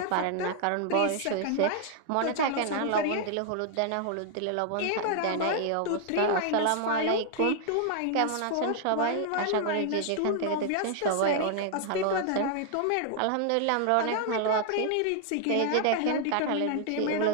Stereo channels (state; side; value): different; both; correlation 0.00